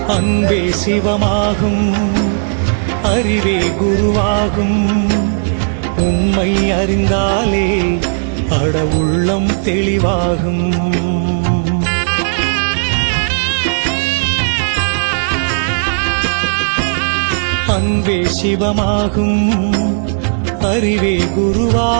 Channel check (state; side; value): silent; left; digital silence